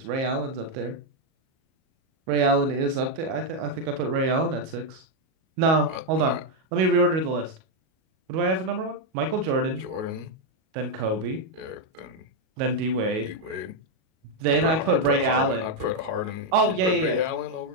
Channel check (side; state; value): left; late; 38 ms